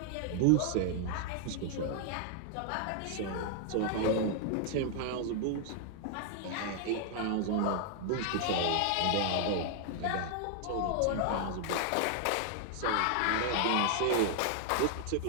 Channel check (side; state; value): both; different; correlation 0.00